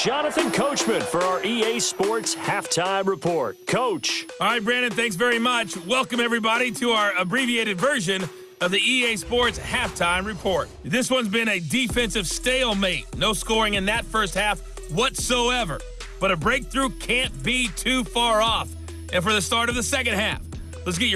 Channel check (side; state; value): both; identical; correlation 1.00